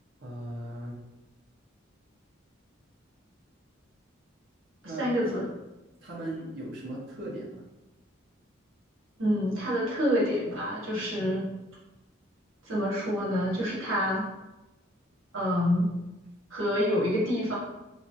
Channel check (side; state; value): both; normal; correlation 0.61